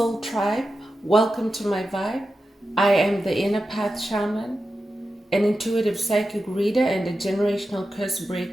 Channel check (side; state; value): both; normal; correlation 0.91